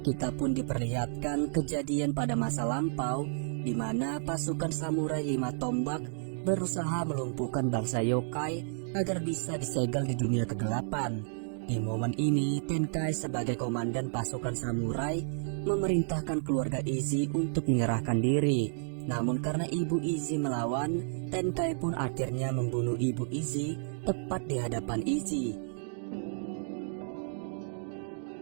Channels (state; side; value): silent; left; digital silence